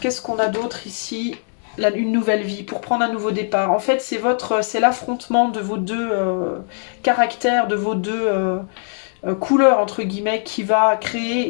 qu'on a d'autre ici? une nouvelle vie, pour prendre un nouveau départ. En fait, c'est l'affrontement de vos deux caractères, de vos deux couleurs, entre guillemets, qui va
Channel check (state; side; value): silent; right; 56 dB below the other